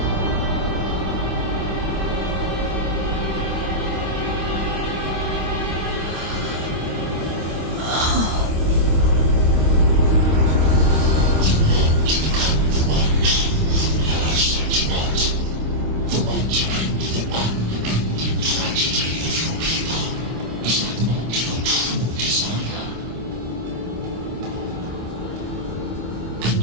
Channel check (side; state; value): left; late; 26 ms